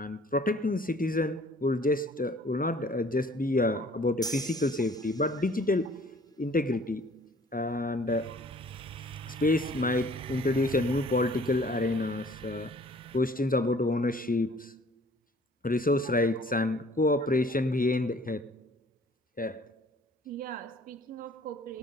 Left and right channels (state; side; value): normal; both; correlation 0.54